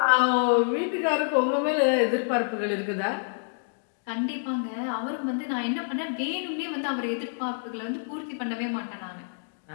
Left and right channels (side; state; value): right; silent; digital silence